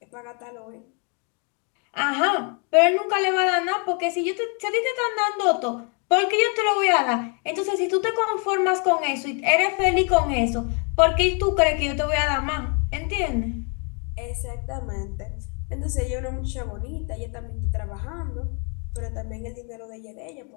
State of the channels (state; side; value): quieter; right; 37.6 dB